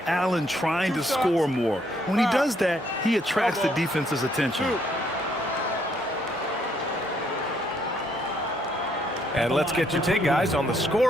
trying to score more. When he does that, he attracts the defense's attention. And let's get your take, guys, on the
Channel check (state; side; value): normal; both; correlation 0.70